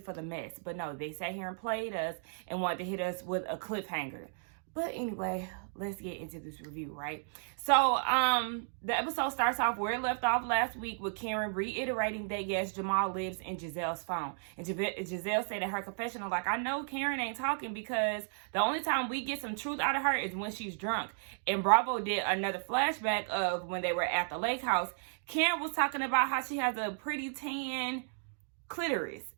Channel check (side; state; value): left; silent; digital silence